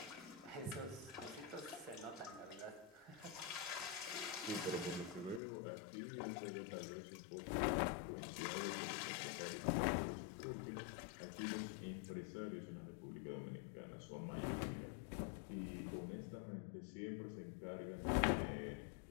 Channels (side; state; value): right; drops out; at 5.4 s